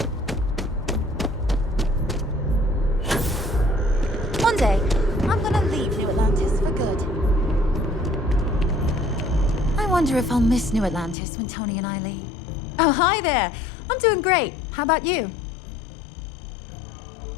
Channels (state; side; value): drops out; right; at 11.2 s